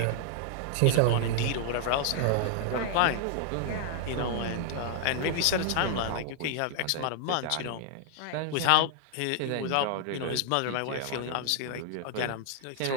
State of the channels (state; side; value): different; both; correlation 0.00